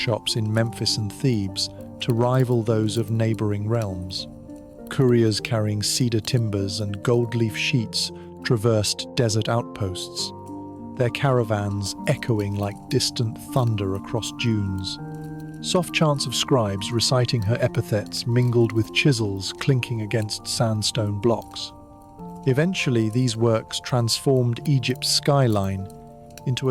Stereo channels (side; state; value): both; identical; correlation 1.00